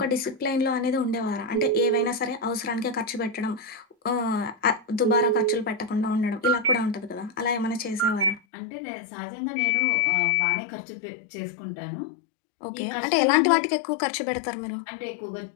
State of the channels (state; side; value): drops out; right; at 8.4 s